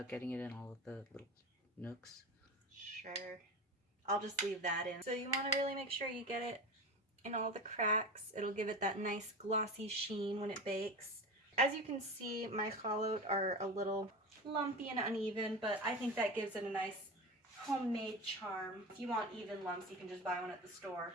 getting it in all of the little nooks? Sure. I'll just leave that in. So you want to really make sure you get it in all the cracks. It'll give it that nice glossy sheen when it bakes. As you can see, my chalot are a little lumpy and uneven, but I think that gives it a nice homemade charm. If you want even lumps, you can just buy one at the store.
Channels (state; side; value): normal; both; correlation 0.27